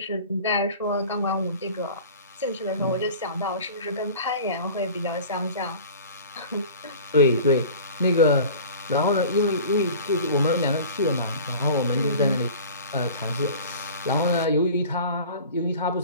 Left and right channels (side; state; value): both; inverted; correlation -0.41